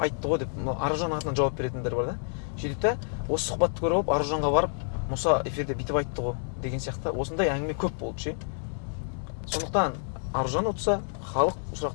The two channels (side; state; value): right; silent; digital silence